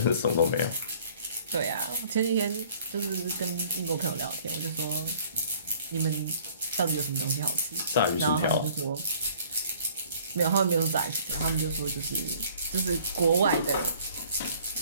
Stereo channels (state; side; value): inverted; both; correlation -0.55